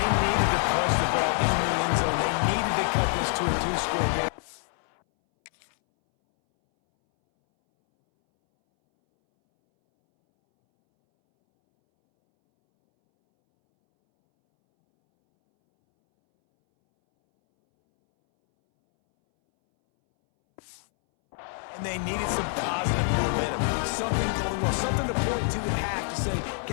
And they needed some positive momentum, something going well, something to point to at half to say,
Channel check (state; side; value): silent; right; 61 dB below the other